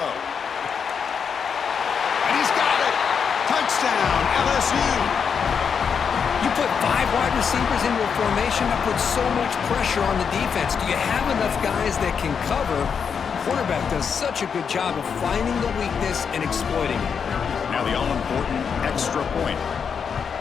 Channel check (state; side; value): quieter; right; 6.6 dB